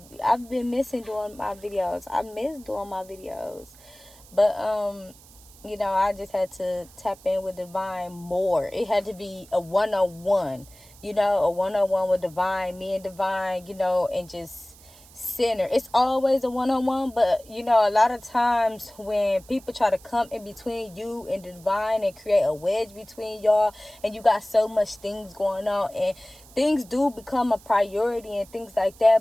I've been missing doing my videos. I miss doing my videos, but I just had to tap in with divine more. It had to be a one-on-one, a one-on-one with divine, me and divine, and just center. It's always a one-on-one, but a lot of times when people try to come in between you and divine and create a wedge between y'all, and you got so much things going on, and things do become a priority and things like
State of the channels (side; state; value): right; noise; hiss, 23 dB below the sound